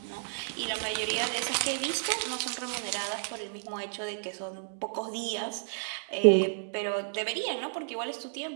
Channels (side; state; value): left; silent; digital silence